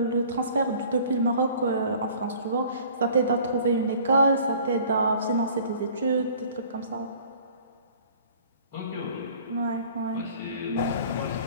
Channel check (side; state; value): both; inverted; correlation -0.51